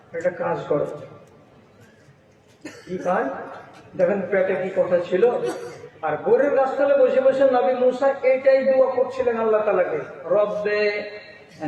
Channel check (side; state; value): both; identical; correlation 1.00